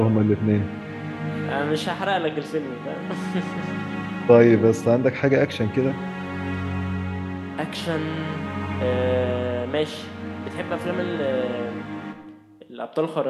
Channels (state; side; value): identical; both; correlation 1.00